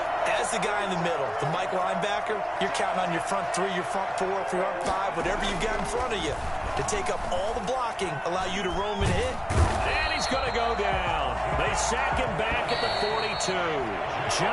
as the guy in the middle, the Mike linebacker, you're counting on your front 3, your front 4, your front 5, whatever you've got in front of you to take up all the blocking, allow you to roam and hit. And he's going to go down. They sack him back at the 42.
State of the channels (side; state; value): both; identical; correlation 1.00